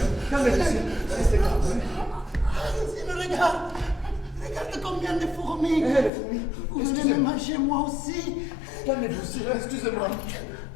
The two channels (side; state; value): right; drops out; at 6.1 s